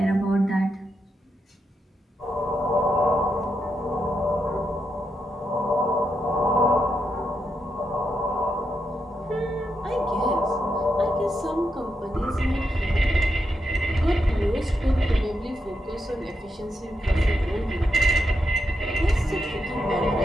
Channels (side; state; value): both; normal; correlation 0.83